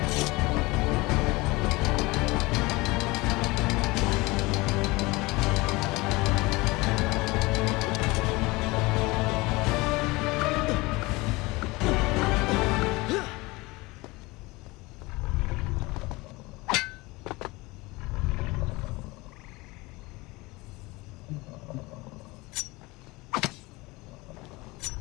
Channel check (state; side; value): quieter; right; 22.7 dB